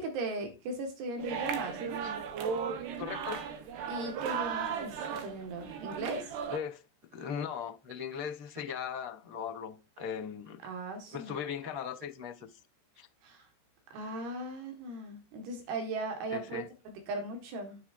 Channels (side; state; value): left; late; 13 ms